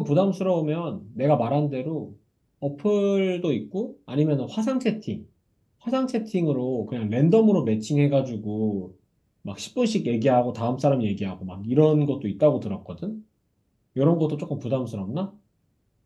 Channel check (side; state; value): both; identical; correlation 1.00